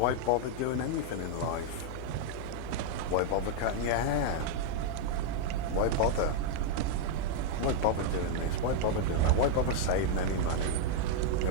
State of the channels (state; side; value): different; both; correlation 0.00